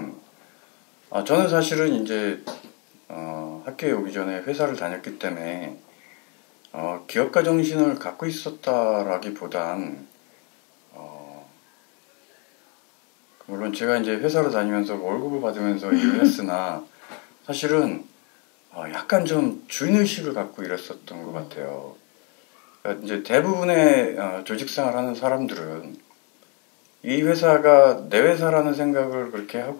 저는 사실은 이제 학교에 오기 전에 회사를 다녔기 때문에 기업가 정신을 갖고 있었다라기보단 물론 제가 이제 회사를 다니면서 월급을 받으면서 일을 했으나 사실은 약간 좀 주인의식을 갖고 일했었던 것 같아요. 그러니까 이제 대부분의 조직생활하는 사람들은 이 회사가 내 회사라는 생각을 그렇게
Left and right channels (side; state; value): right; quieter; 34.2 dB